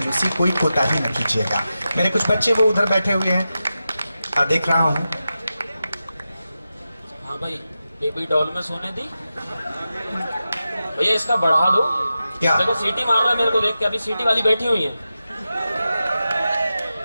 कोई कोताही न कीजिएगा। मेरे कुछ बच्चे वो उधर बैठे हुए हैं, देख रहा हूँ। हाँ भाई, बेबी डॉल में सोने दी भैया, इसका बढ़ा दो। क्या देखो सीटी मार रहा है मेरे को देख के, अभी सीटी वाली बैठी हुई है।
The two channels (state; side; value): inverted; both; correlation -0.92